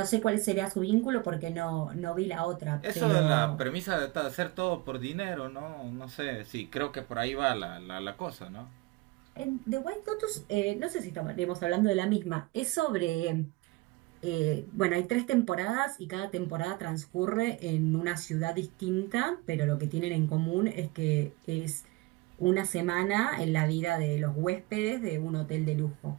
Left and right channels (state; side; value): quieter; left; 21.7 dB